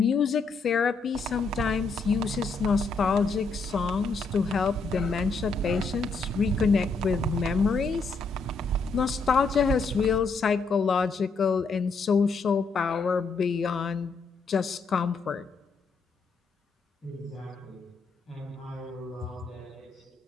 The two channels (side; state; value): right; quieter; 4.1 dB